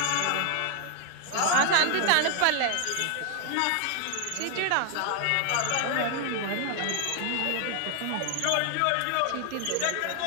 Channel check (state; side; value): different; both; correlation 0.00